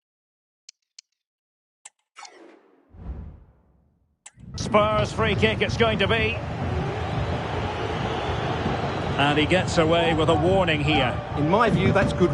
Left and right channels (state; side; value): identical; both; correlation 1.00